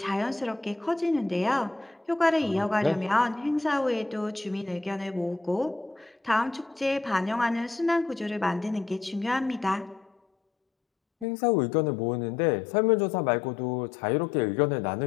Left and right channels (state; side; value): drops out; right; at 11.2 s